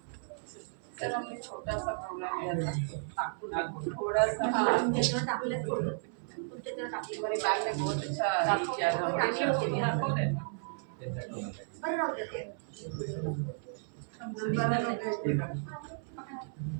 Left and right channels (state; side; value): silent; left; 55 dB below the other